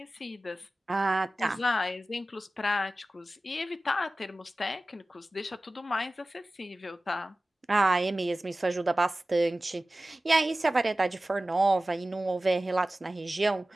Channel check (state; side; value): normal; both; correlation 0.96